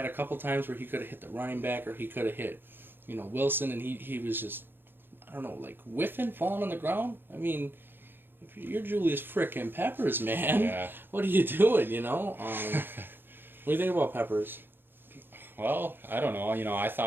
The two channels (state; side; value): late; left; 0.10 ms